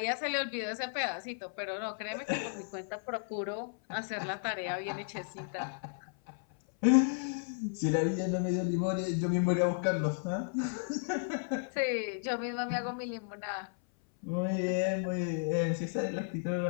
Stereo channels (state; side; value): silent; right; 55 dB below the other